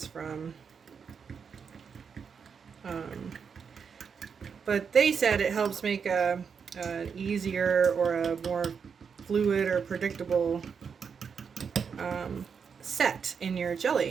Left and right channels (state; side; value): quieter; left; 6.3 dB